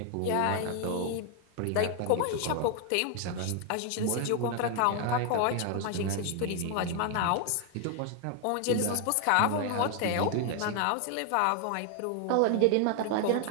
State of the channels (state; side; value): different; both; correlation 0.00